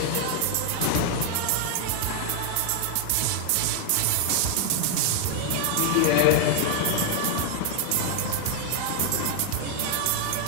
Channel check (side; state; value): both; different; correlation 0.00